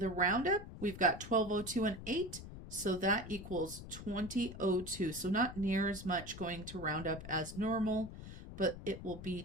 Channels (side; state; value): left; noise; rumble, 12 dB below the sound